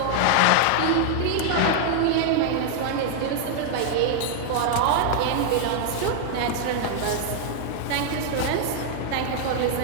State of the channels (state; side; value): different; both; correlation 0.00